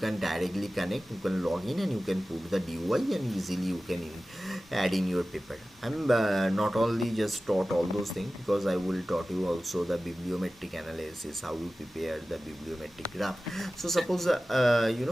directly connect, you can log in and you can put the DOI and easily you can add in your paper. I'm not only just taught all those things, because I will taught you also the bibliometric analysis, how you prepare the bibliometric graph. So suppose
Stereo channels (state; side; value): normal; both; correlation 0.96